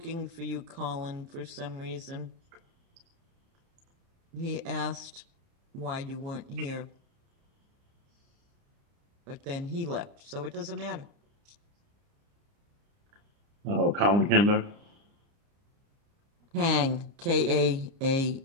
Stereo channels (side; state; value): left; late; 30 ms